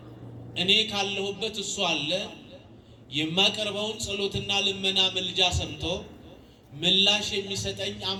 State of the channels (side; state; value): both; identical; correlation 1.00